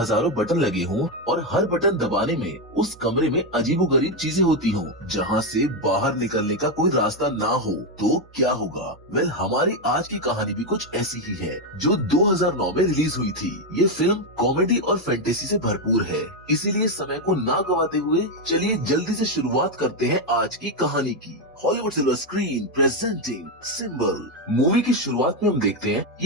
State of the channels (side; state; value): both; normal; correlation 0.06